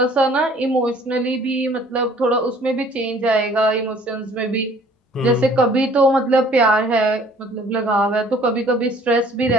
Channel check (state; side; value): normal; both; correlation 0.55